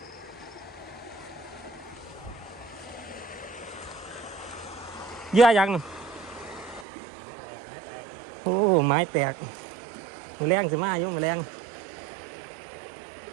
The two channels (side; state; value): left; drops out; at 6.9 s